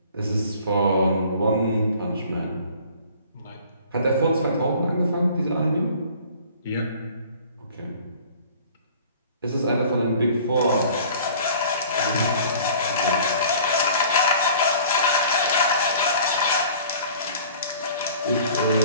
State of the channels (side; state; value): both; inverted; correlation -0.49